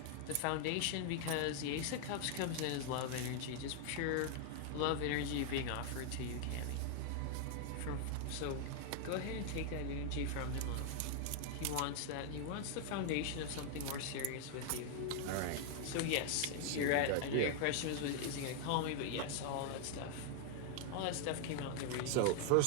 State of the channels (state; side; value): different; both; correlation 0.00